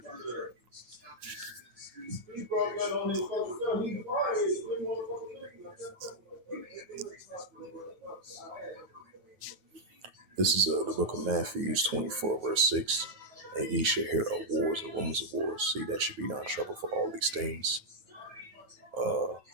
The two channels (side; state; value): left; late; 9.4 ms